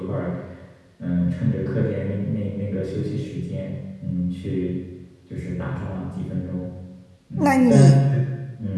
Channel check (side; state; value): both; identical; correlation 1.00